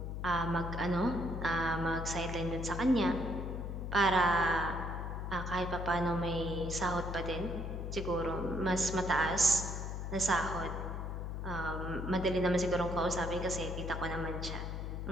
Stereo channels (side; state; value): left; noise; hum, 4 dB below the sound